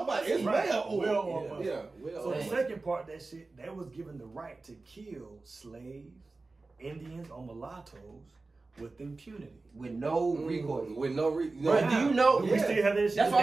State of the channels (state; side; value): quieter; left; 3.6 dB